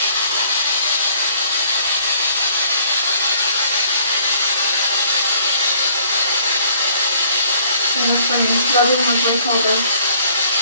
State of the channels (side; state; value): both; inverted; correlation -0.60